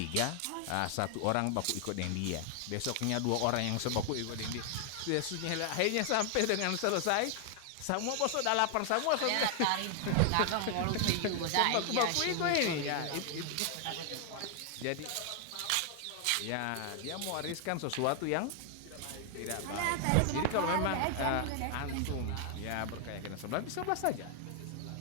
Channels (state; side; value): different; both; correlation 0.00